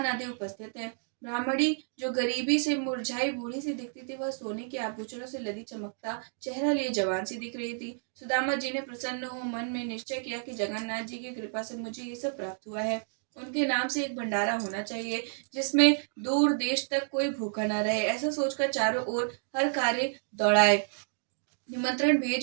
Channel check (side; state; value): left; silent; digital silence